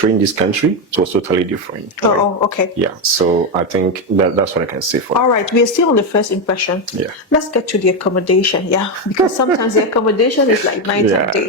in this country, it was totally different. Right? Oh, okay. Yeah, so I think that's what I can say for All right, we are still on the first impression. Yeah. Let's get to the accommodation, yeah, because sometimes the accommodation is like night and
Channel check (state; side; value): normal; both; correlation 0.08